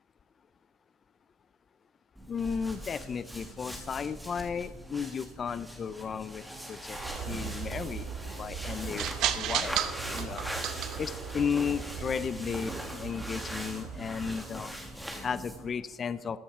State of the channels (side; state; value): both; normal; correlation 0.69